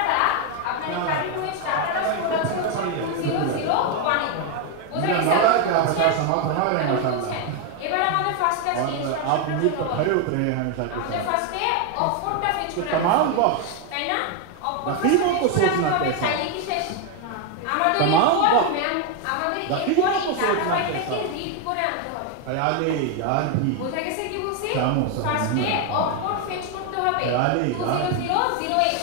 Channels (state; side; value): different; both; correlation 0.01